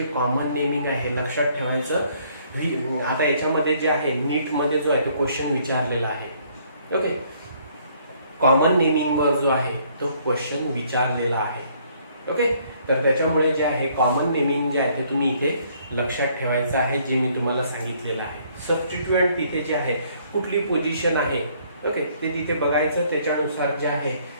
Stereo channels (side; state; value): both; inverted; correlation -0.64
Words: कॉमन नेमिंग आहे लक्षात ठेवायचं. आता याच्यामध्ये जे आहे नीट मध्ये जो आहे तो क्वेश्चन विचारलेला आहे. ओके, कॉमन नेमिंग वर जो आहे तो क्वेश्चन विचारलेला आहे. ओके, तर त्याच्यामुळे जे आहे कॉमन नेमिंग जे आहे ते तुम्ही इथे लक्षात ठेवायचं आहे, जे मी तुम्हाला सांगितलेलं आहे. सबस्टिट्यूएंट तिथे जे आहे कुठली पोझिशन आहे, ओके, ते तिथे बघायचं. त्याच्यानुसार जे आहे